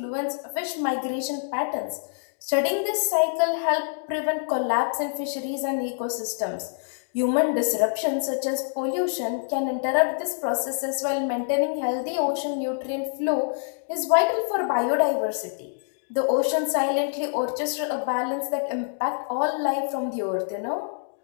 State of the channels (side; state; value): right; silent; digital silence